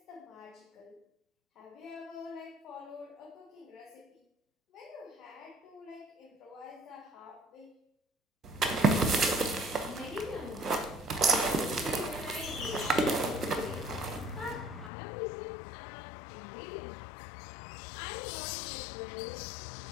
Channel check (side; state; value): right; drops out; at 14.9 s